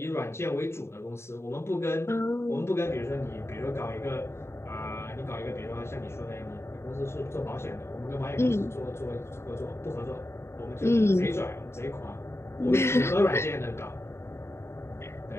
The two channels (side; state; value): right; late; 0.13 ms